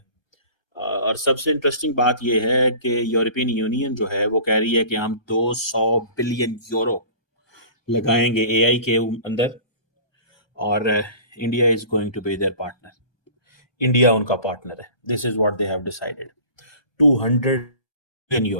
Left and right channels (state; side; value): late; right; 1.2 ms